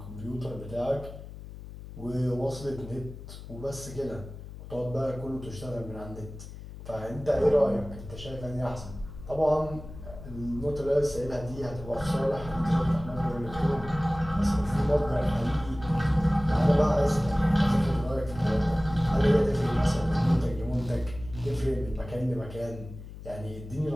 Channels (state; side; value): noise; left; hum, 13 dB below the sound